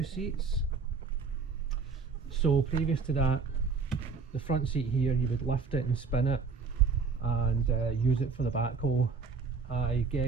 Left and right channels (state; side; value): quieter; left; 5.1 dB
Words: seats. So previous to that, the front seat here, you would lift it and spin it and use it for the backhoe. I